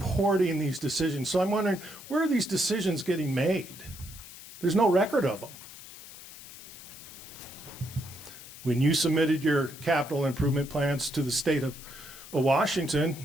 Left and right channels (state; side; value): noise; left; hiss, 16 dB below the sound